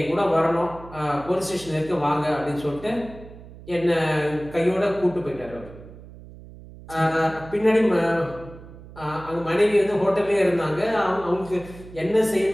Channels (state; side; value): noise; right; hum, 17 dB below the sound